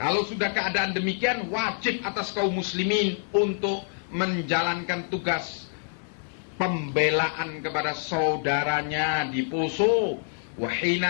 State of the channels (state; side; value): silent; right; digital silence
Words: kalau sudah keadaan demikian, wajib atas kaum muslimin untuk menjalankan tugas pembelaan kepada saudaranya di Poso. Wa